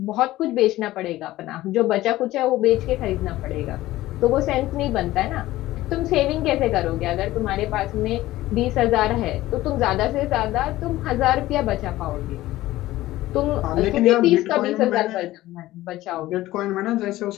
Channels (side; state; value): right; quieter; 16.3 dB